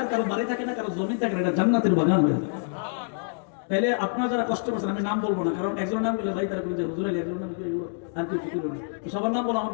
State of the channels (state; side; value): silent; right; digital silence